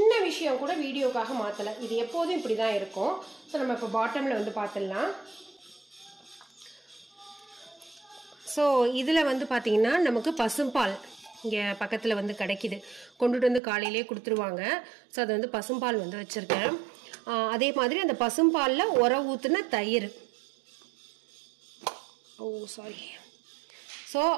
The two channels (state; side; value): drops out; left; at 13.6 s